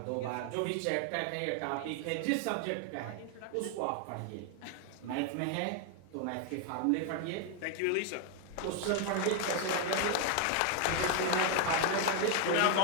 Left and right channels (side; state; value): both; different; correlation 0.01